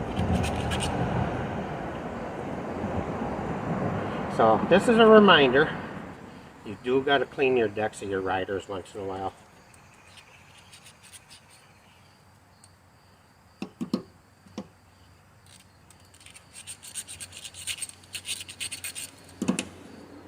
So this is a reminder, you do got to clean your decks of your riders once in a while.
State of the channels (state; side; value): identical; both; correlation 1.00